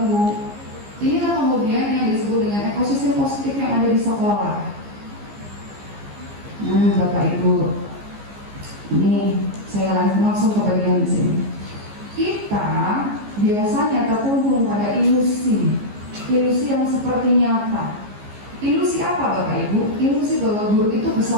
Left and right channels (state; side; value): late; left; 15 ms